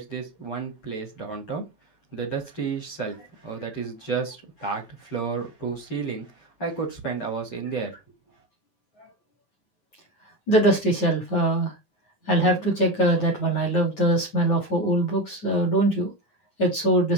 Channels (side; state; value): right; late; 9.4 ms